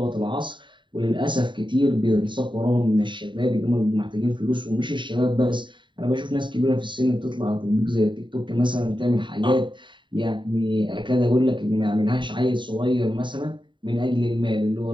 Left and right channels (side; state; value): left; late; 0.23 ms